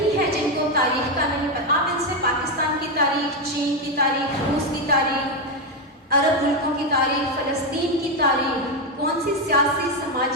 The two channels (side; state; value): both; normal; correlation 0.07